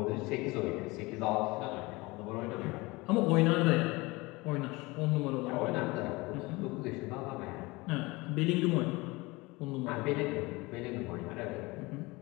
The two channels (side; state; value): right; quieter; 23.3 dB